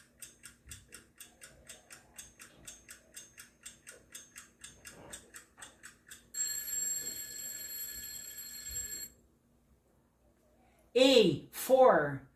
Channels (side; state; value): both; identical; correlation 1.00